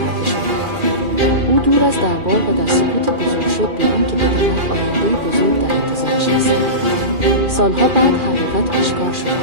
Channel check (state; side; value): late; left; 2.4 ms